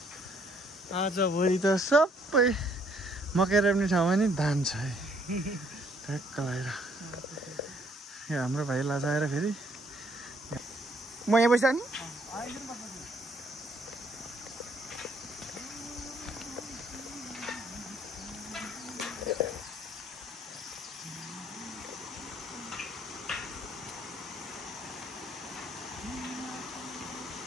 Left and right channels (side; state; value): both; normal; correlation 0.65